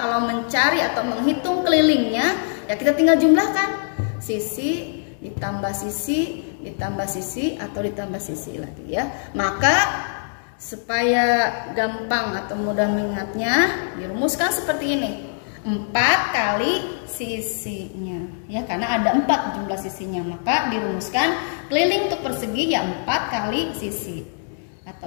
mencari atau menghitung kelilingnya ya kita tinggal jumlahkan sisi ditambah sisi ditambah sisi atau ditambah sisi lagi ya. Maka supaya gampang atau mudah mengingatnya, dirumuskan seperti ini. 4 kali sisinya ya, karena ada 4 jumlah sisinya, maka dirumuskan keliling untuk persegi ya 4 kali sisi.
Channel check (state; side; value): silent; right; digital silence